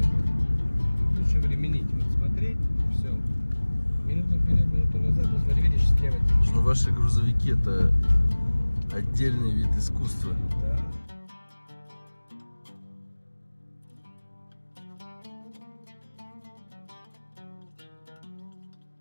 Лучше временить. Вот смотреть, все. Минуту вперед, минуту назад. Вот смотри, видишь, слева. Ну, ваши грузовики это отдельный вид искусства. Да.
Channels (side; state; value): both; inverted; correlation -1.00